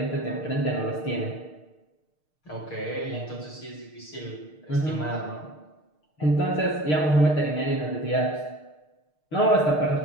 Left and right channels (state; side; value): late; right; 6.6 ms